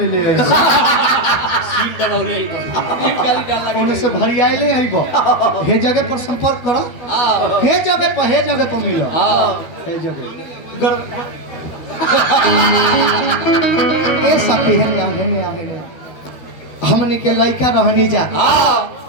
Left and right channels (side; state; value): right; late; 12 ms